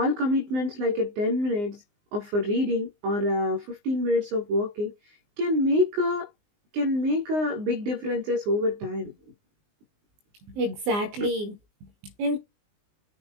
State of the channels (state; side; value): late; left; 19 ms